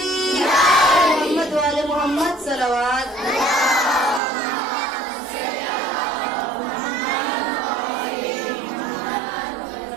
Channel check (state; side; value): drops out; left; at 4.2 s